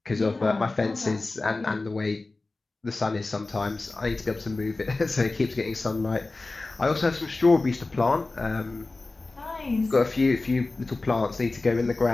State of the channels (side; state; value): right; quieter; 3.3 dB